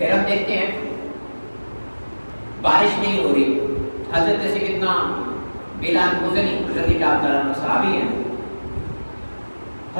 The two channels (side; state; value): both; inverted; correlation -1.00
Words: ہم دیکھتے ہیں بارش نہیں ہو رہی، حضرت سیدنا بلال مزنی رضی اللہ عنہ صحابی ہیں،